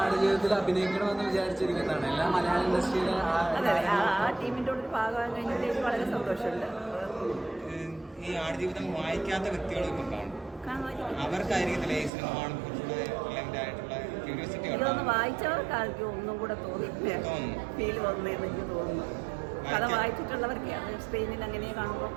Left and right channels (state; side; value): drops out; left; at 12.1 s